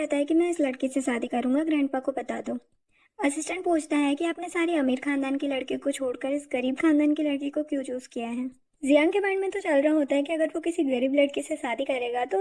है कि मैं इस लड़की से शादी करूंगा, ग्रैंडपा को बता दो। असिस्टेंट पूछता है कि आपने सारी अमीर खानदान की लड़कियों को छोड़कर इस गरीब खानदान की लड़की को क्यों चूज किया है। जियांग के माइंड में तो चल रहा होता है कि अगर वो किसी गरीब लड़की से शादी करेगा तो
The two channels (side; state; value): both; identical; correlation 1.00